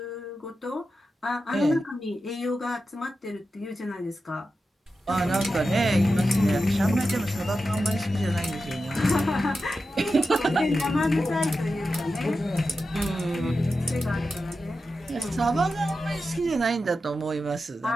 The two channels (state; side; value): normal; both; correlation 0.91